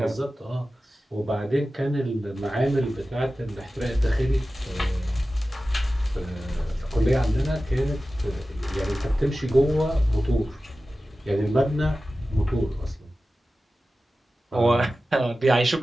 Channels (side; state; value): both; normal; correlation 0.95